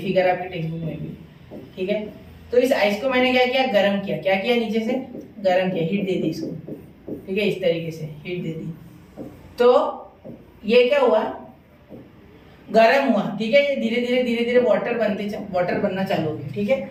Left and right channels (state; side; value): identical; both; correlation 1.00